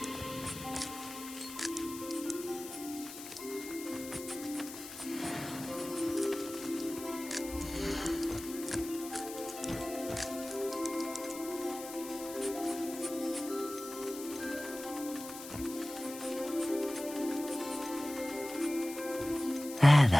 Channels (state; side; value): noise; left; hiss, 12 dB below the sound